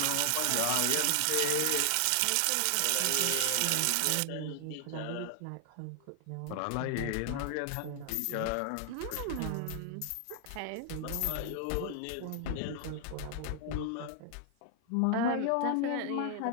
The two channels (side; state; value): both; different; correlation 0.00